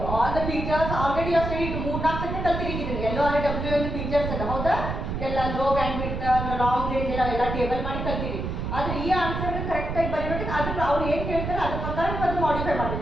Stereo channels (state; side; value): noise; right; rumble, 4 dB below the sound